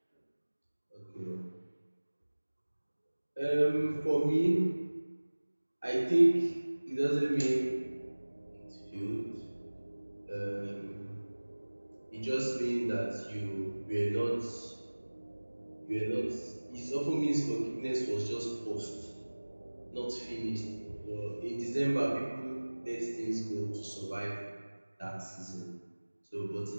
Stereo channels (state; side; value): inverted; both; correlation -1.00